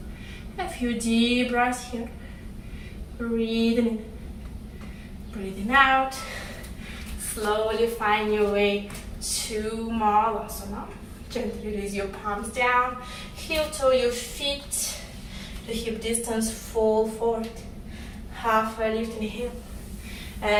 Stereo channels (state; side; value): identical; both; correlation 1.00